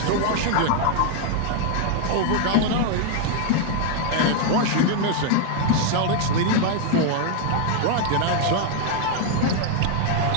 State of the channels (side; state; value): both; different; correlation 0.00